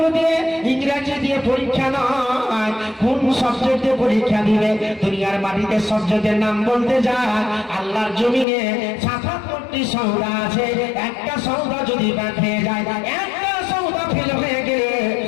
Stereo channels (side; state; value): right; drops out; at 8.5 s